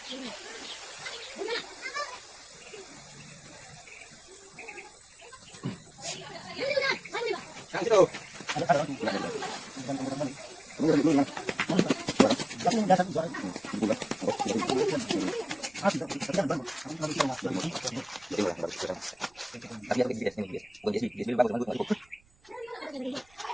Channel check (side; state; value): right; noise; rumble, 30 dB below the sound